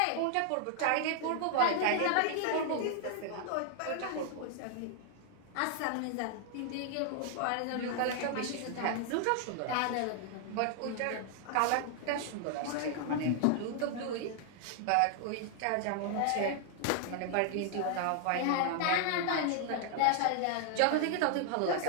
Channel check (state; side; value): different; both; correlation 0.00